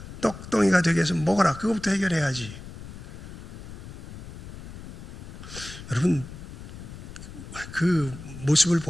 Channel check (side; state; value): left; noise; rumble, 12 dB below the sound